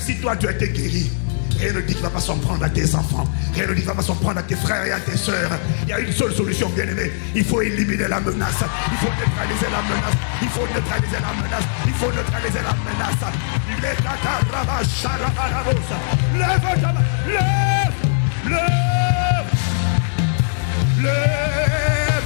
toi tu as été guéri, rien ne dit qu'il ne va pas s'en prendre à tes enfants. Rien ne dit qu'il ne va pas s'en prendre à tes frères et à tes soeurs. Il y a une seule solution, bien-aimé. Il faut éliminer la menace. Il faut neutraliser la menace. Il faut neutraliser la menace. Il faut neutraliser la menace. Lève ta main. Lève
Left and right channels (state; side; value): silent; right; digital silence